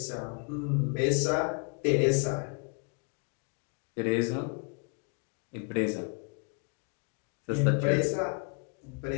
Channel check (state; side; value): quieter; right; 38.5 dB